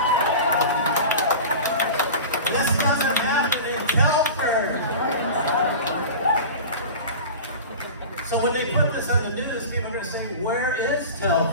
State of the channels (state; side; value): inverted; both; correlation -0.33